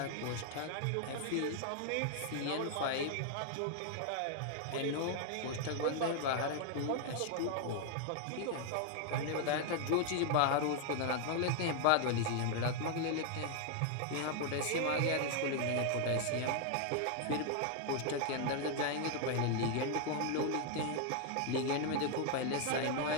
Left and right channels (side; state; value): both; different; correlation 0.00